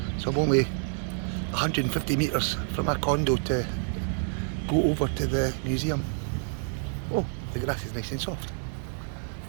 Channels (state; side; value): silent; left; 57 dB below the other